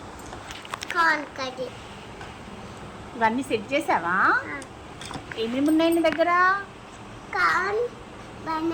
ఇవన్నీ సెట్ చేసావా? ఏమేమి ఉన్నాయి నీ దగ్గర? Corn,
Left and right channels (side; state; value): both; identical; correlation 1.00